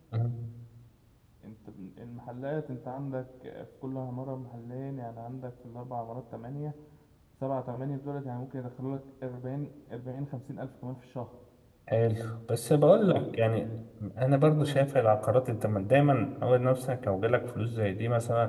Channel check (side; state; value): both; identical; correlation 1.00